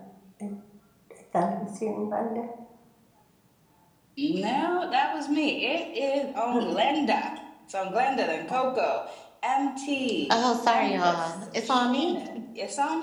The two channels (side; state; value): both; identical; correlation 1.00